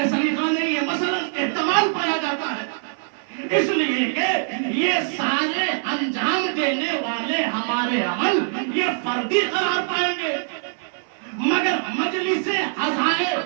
सलीका नहीं है, मसलन इस्तेमाल पाया जाता है। इसलिए कि ये सारे अंजाम देने वाले हमारे अमल ये फर्दी करार पाएंगे, मगर मजलिस आज़ाए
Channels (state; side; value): silent; left; 58 dB below the other